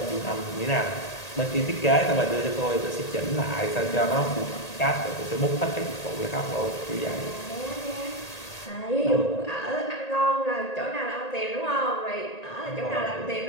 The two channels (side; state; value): right; late; 1.8 ms